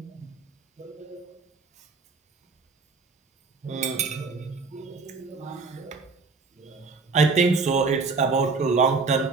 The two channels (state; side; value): quieter; left; 4.4 dB